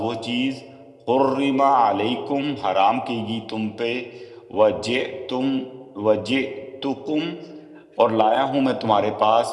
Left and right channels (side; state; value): both; identical; correlation 1.00